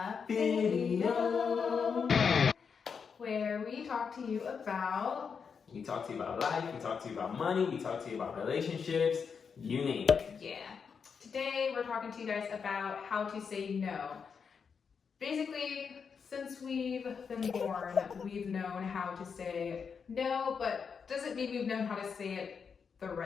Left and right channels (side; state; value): right; quieter; 6.1 dB